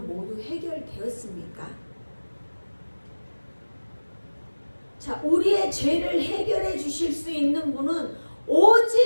모두 해결되었습니까? 자, 우리의 죄를 해결해 주실 수 있는 분은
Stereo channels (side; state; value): both; inverted; correlation -1.00